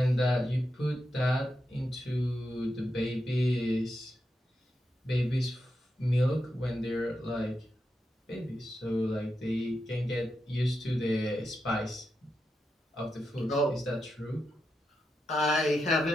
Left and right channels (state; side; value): normal; both; correlation 0.87